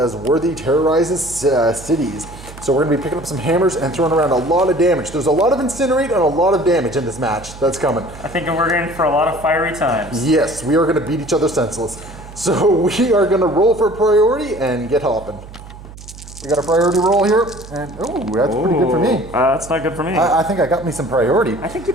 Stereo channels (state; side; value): noise; right; hum, 16 dB below the sound